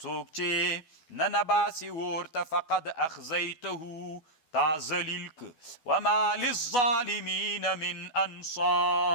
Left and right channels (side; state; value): right; late; 12 ms